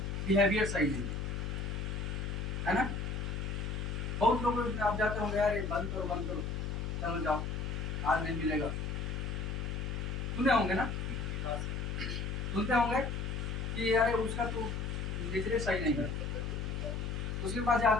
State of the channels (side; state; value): left; noise; hum, 2 dB below the sound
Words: बिहेवियर सही नहीं है ना। बहुत लोग आप जाते होंगे, यार बंद करो बंद करो, चलो जाओ आज नहीं मिलेगा, सुने होंगे ना, सुनते होंगे कि यार उसका तो नेचर सही नहीं है। उसके पास